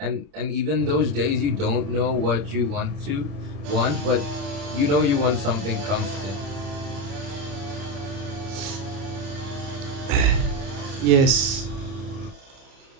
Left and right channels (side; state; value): left; late; 31 ms